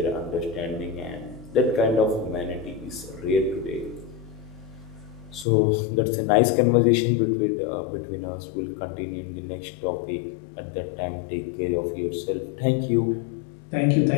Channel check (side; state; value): right; drops out; at 5.5 s